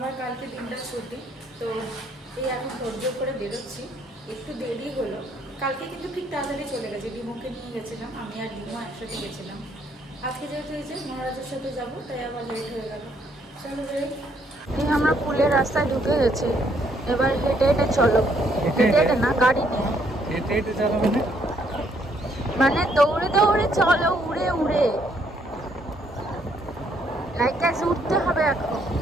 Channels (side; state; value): both; normal; correlation 0.69